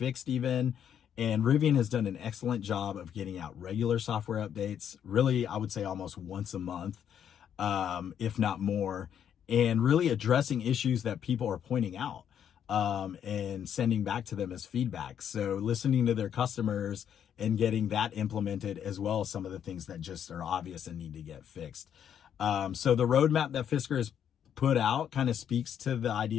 even. And Rivian has done an excellent job of getting out regular software updates. Really, I would say almost once a month, if not more, and really addressing issues that people are pointing out and sending back to them as feedback. So listening to their customers and getting that implemented, as well as some of the things that just are obvious and need to get fixed. So the roadmap that Fisker has put out kind of speaks to the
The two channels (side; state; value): right; quieter; 9.0 dB